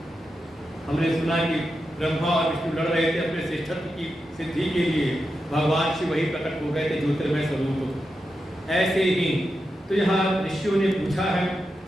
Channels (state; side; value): normal; both; correlation 0.88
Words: हमने सुना कि ब्रह्मा और विष्णु लड़ रहे थे अपने श्रेष्ठत्व की सिद्धि के लिए, भगवान शिव वही प्रकट हो गए थे ज्योतिर्मय स्वरूप। ऐसे ही तो यहाँ ऋषियों ने पूछा है